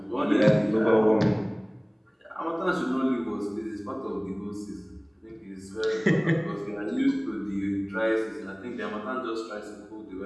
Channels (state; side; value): identical; both; correlation 1.00